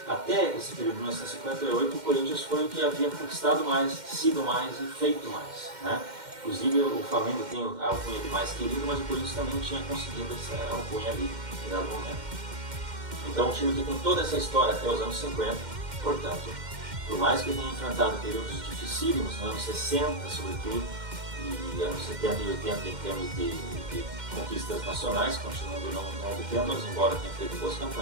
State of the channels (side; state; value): left; late; 2.1 ms